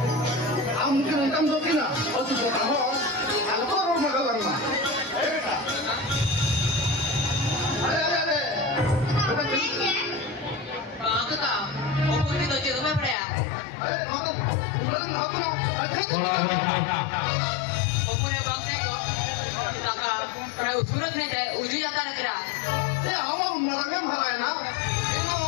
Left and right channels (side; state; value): right; drops out; at 13.2 s